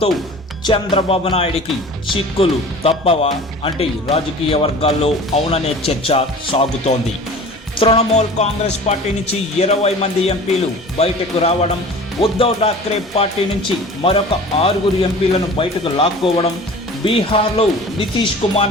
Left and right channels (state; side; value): normal; both; correlation 0.41